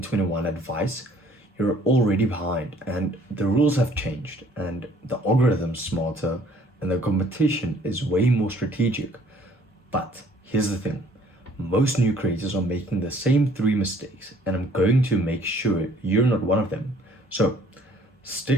advice, you're already behind, and the rules have changed, and the algorithm's smarter, and the competition is way more strategic. But here's the thing, most new creators are making the same three mistakes, and I'm going to make sure you're not one of them. So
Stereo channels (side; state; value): both; normal; correlation 0.58